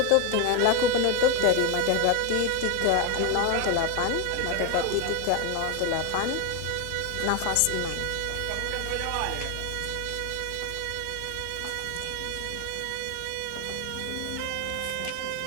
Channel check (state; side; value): different; both; correlation 0.01